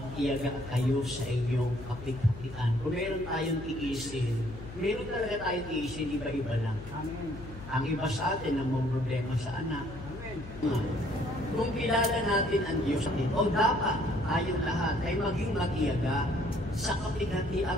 kayo sa inyong kapigatian. Kung meron tayong tiisin, meron talaga tayong tiisin, iba-iba lang. Amen. Ang iba sa atin, ang mga problema sa anak. Amen. Kung kilala natin ang Diyos, o dapat tayong lahat ay maging matiyaga sa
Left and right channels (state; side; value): noise; left; hum, 13 dB below the sound